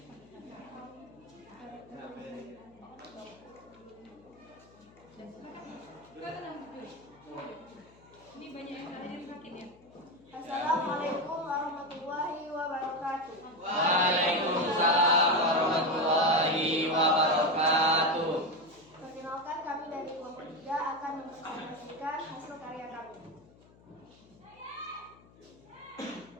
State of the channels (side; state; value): left; noise; hum, 26 dB below the sound